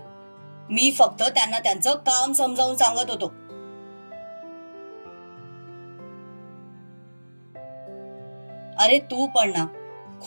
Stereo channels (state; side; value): inverted; both; correlation -1.00